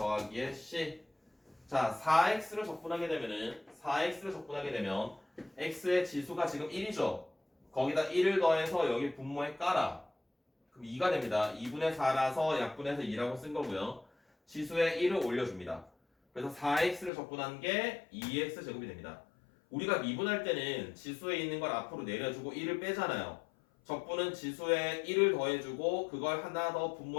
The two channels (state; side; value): drops out; right; at 17.1 s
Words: c. 자, 4x를 적분하게 되면 x의 지수가 지금 1이죠. 거기다 1을 더해서 여기 분모에 깔아. 그럼 2가 됩니다. 2분의 4라서 약분해서 2라고 쓴 거고요. 지수에 1을 올려줍니다. 그래서 4x를 적분한 게 2x 제곱이 됩니다. 우리가 미분할 때는 지수에 있는 걸 앞으로 내려주고 1을 빼잖아요. 적분은 지수에 1을 더해주고 그걸 하나 더